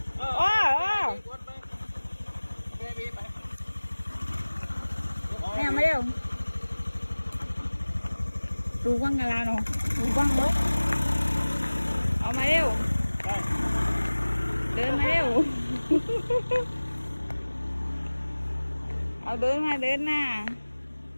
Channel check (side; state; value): both; inverted; correlation -1.00